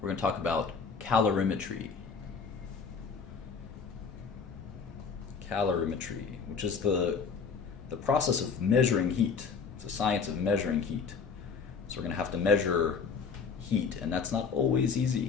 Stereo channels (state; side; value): quieter; right; 5.7 dB